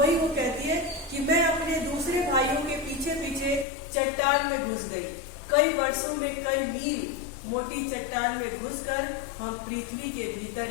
वो कहती है कि मैं अपने दूसरे भाइयों के पीछे पीछे चट्टान में घुस गई। कई वर्षों में कई मील मोटी चट्टान में घुसकर हम पृथ्वी के भीतर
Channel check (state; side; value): drops out; right; at 3.7 s